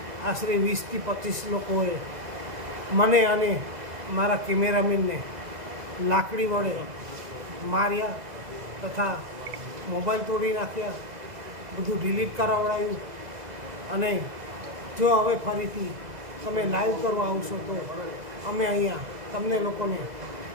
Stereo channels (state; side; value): late; left; 2.0 ms